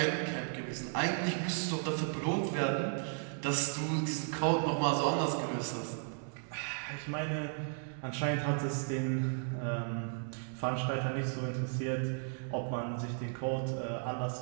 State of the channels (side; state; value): left; silent; 55 dB below the other